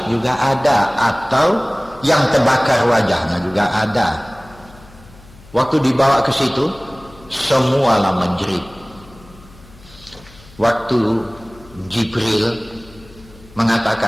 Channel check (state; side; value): noise; left; hum, 23 dB below the sound